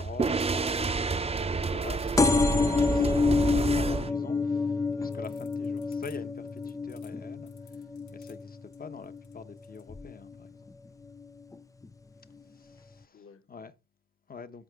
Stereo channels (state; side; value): normal; both; correlation 0.72